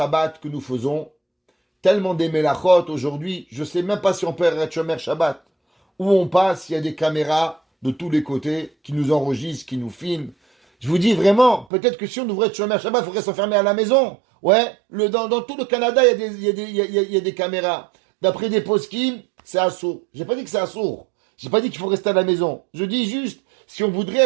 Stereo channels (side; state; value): left; drops out; at 11.7 s